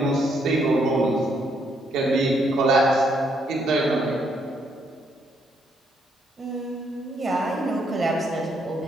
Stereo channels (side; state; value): both; normal; correlation 0.73